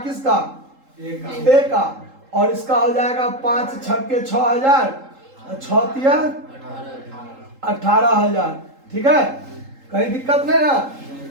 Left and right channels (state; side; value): late; left; 3.8 ms